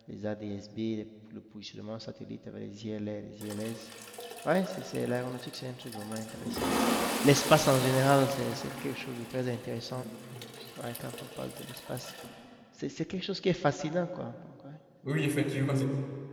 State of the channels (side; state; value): both; identical; correlation 1.00